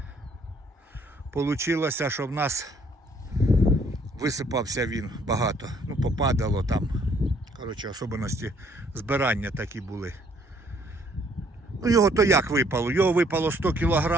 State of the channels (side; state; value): both; normal; correlation 0.64